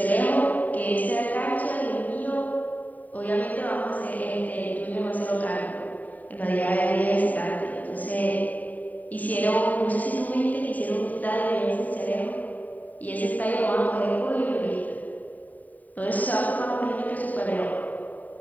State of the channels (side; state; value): right; late; 0.076 ms